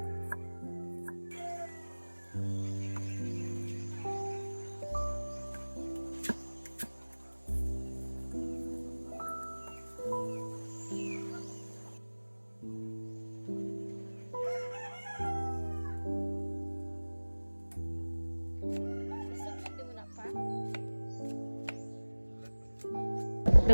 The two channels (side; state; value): both; inverted; correlation -1.00